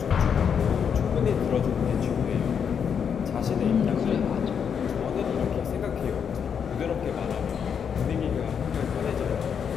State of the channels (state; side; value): quieter; right; 7.3 dB